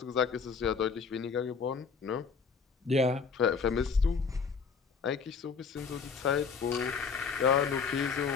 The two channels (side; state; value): right; quieter; 5.5 dB